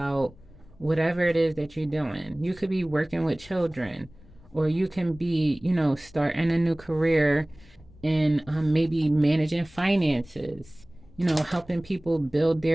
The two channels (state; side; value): noise; left; rumble, 24 dB below the sound